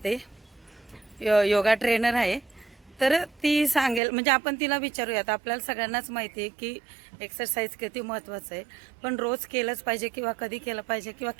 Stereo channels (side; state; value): left; drops out; at 4.0 s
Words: योगा ट्रेनर आहे. तर ती सांगेल, म्हणजे आपण तिला विचारूयात. आपल्याला सगळ्यांनाच माहिती आहे की एक्सरसाइज किती महत्त्वाचं आहे, पण रोज केलंच पाहिजे किंवा कधी केलं पाहिजे किंवा